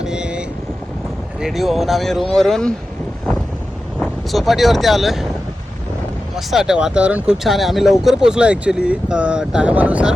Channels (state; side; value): normal; both; correlation 0.93